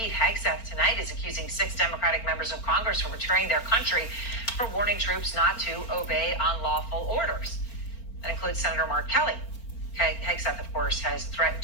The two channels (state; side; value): late; right; 4.4 ms